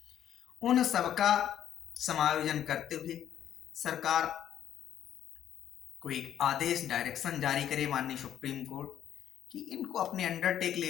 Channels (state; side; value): quieter; right; 10.5 dB